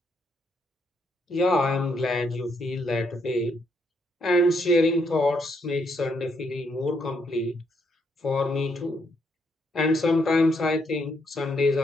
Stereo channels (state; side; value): normal; both; correlation 0.75